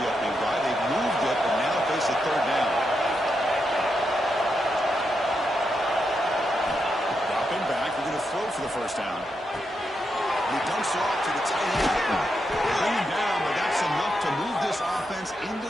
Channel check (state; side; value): normal; both; correlation 0.84